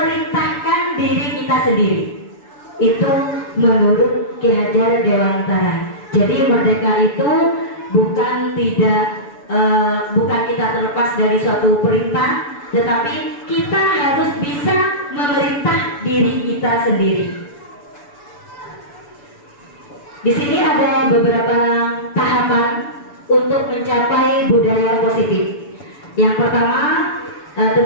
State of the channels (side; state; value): right; late; 7.0 ms